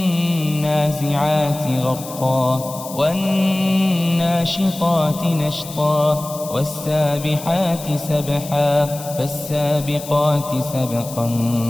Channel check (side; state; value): left; noise; hiss, 13 dB below the sound